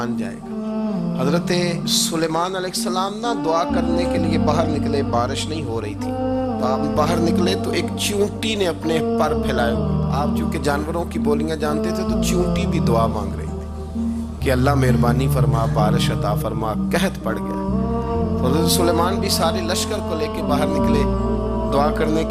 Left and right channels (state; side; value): identical; both; correlation 1.00